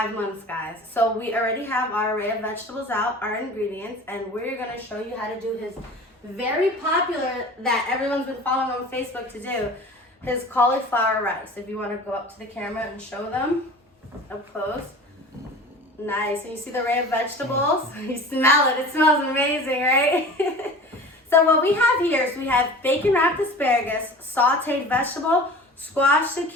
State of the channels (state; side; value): normal; both; correlation 0.39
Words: months, guys. So we already have our array of vegetables out, our ingredients, and we're going to show you how to do his very popular, that everyone's been following on Facebook to do, his cauliflower rice. If you want to go up to the camera and show them up close. Nice. And you see the array of vegetables? You smell it. It smells amazing, right? So what we have here is we have bacon wrapped asparagus, sauteed vegetable, squash,